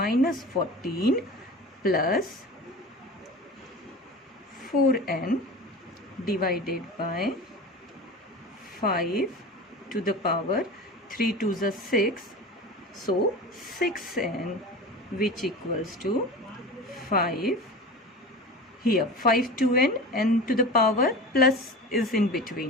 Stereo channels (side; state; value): both; normal; correlation 0.33